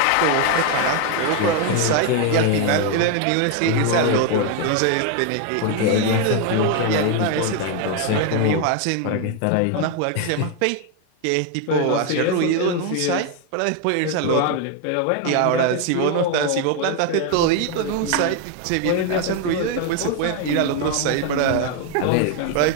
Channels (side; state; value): both; different; correlation 0.01